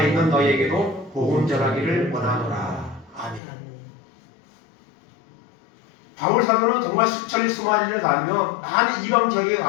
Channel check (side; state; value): right; drops out; at 3.4 s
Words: 있는 너희에게도 복음 전하기를 원하노라. 아멘. 바울 사도는 정말 수천리 수만리를 다니며 많은 이방 지역에